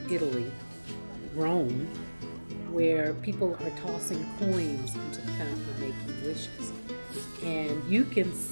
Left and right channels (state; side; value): inverted; both; correlation -1.00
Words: Italy, Rome, where people are tossing coins into the fountain and making wishes. And you can